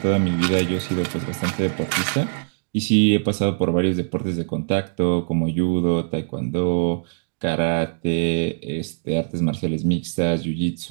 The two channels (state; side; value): silent; left; digital silence